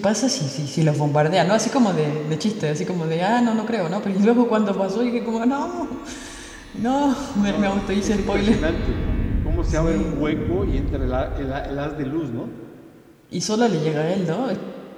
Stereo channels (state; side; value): identical; both; correlation 1.00